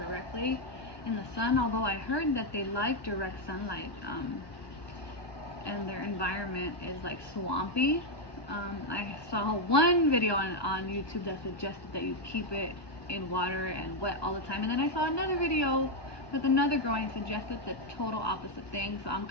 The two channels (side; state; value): right; late; 1.2 ms